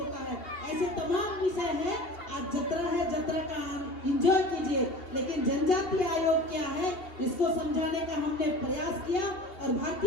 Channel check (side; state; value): right; late; 2.7 ms